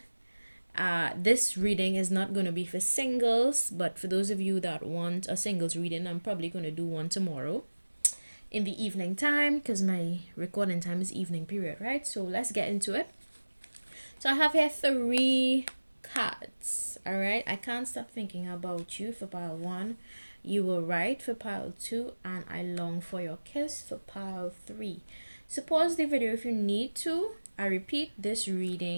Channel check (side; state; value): both; inverted; correlation -1.00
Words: This reading is not going to be for singles, but for those of you that want a singles reading, I'm probably going to do one tomorrow in the evening time because my recording time is evening period, right? So let's get into it. So I have here 3 cards, all right? I can't stop thinking about you for pile 1. You were right for pile 2, and I long for your kiss for pile 3. So pause the video if you need to. I repeat, this